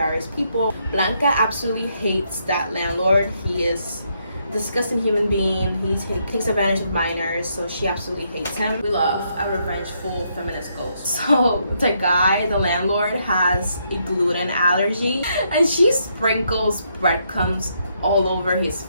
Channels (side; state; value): both; inverted; correlation -0.75